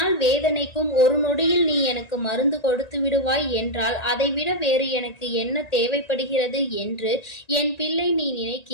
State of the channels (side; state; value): right; late; 1.8 ms